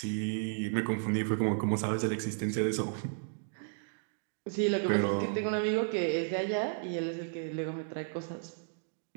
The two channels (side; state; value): left; silent; digital silence